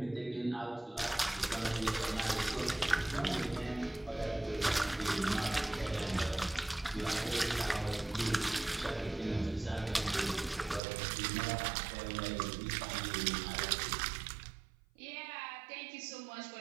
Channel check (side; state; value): left; drops out; at 10.8 s